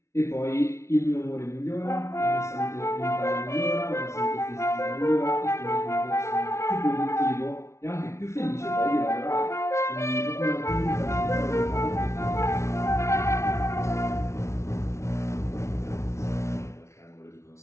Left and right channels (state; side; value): late; right; 0.13 ms